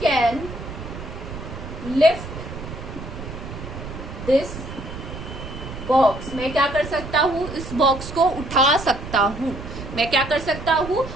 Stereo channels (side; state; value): right; noise; rumble, 10 dB below the sound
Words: can lift this box. मैं क्या कर सकता हूं? इस बॉक्स को उठा सकता हूं। मैं क्या कर सकता हूं?